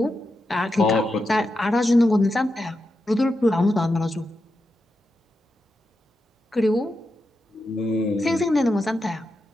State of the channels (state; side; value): normal; both; correlation 0.87